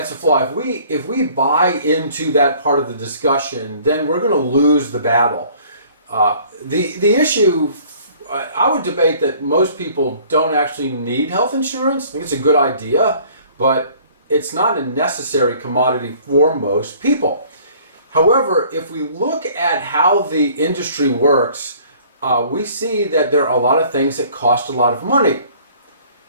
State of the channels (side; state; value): both; inverted; correlation -0.54